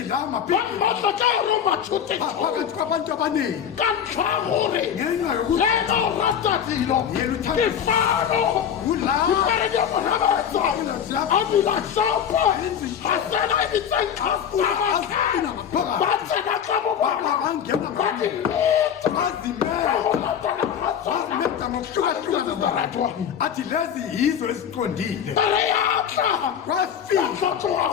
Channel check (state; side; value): quieter; right; 8.5 dB